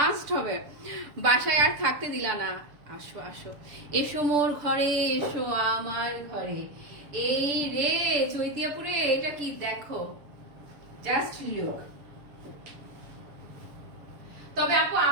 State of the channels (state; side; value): late; left; 6.9 ms